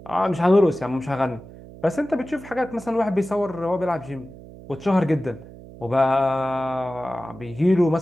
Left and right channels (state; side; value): noise; right; hum, 18 dB below the sound